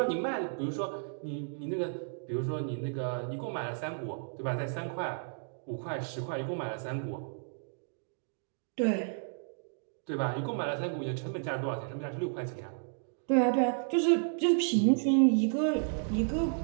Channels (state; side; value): silent; left; digital silence